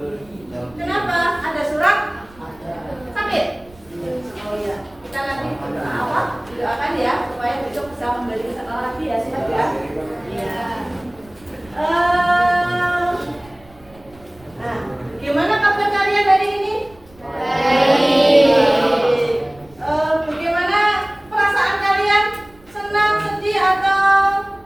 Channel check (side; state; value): right; noise; rumble, 26 dB below the sound